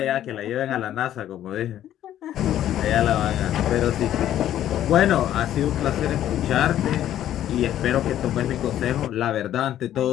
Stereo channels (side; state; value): right; quieter; 11.8 dB